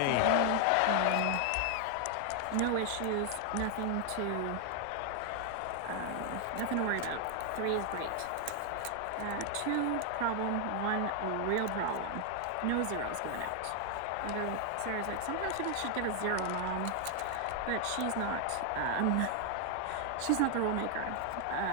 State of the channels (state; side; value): different; both; correlation 0.00